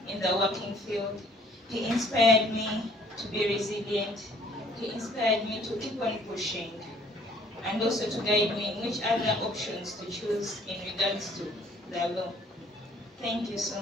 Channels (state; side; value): normal; both; correlation 0.58